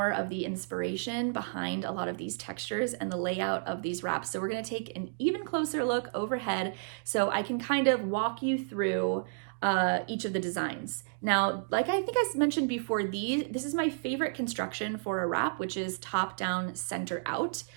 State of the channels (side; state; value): left; silent; digital silence